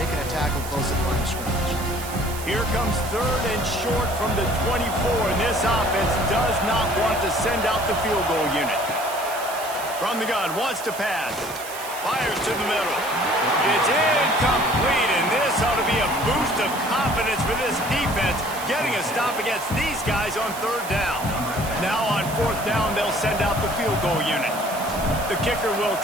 a tackle close at the line of scrimmage. Here comes third and short from the 24, and this offense does not want to send out the field goal unit. From the gun, wants to pass. Fires to the middle. It's incomplete, and this ought to be a boost of confidence for this defense, getting a stop against these guys on third down. Now on fourth down, they'll send out the field goal unit. The kicker will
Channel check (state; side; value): noise; right; hiss, 12 dB below the sound